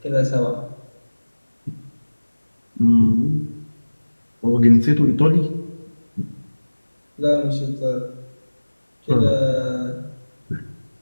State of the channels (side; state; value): both; inverted; correlation -1.00